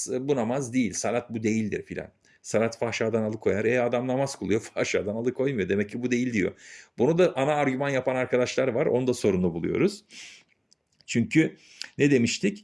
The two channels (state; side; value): identical; both; correlation 1.00